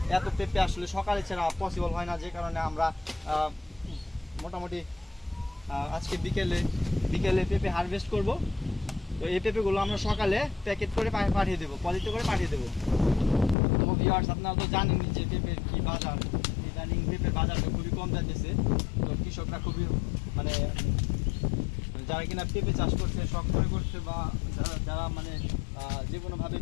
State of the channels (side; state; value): right; drops out; at 13.6 s